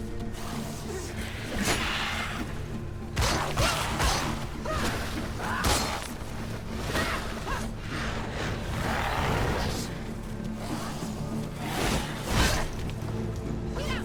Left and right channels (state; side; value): identical; both; correlation 1.00